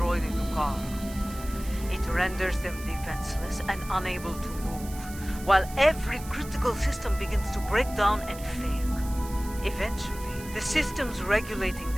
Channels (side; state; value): right; noise; hiss, 16 dB below the sound